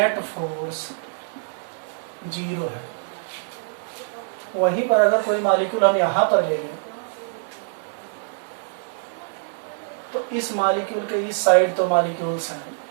फोर्स 0 है। वहीं पर अगर कोई मॉलिक्यूल हम यहाँ पर ले लें तो इस मॉलिक्यूल के इस साइड तो मॉलिक्यूल्स हैं,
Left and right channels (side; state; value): left; silent; digital silence